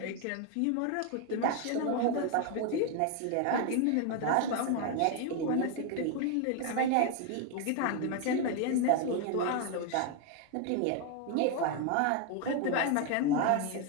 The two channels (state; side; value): different; both; correlation 0.01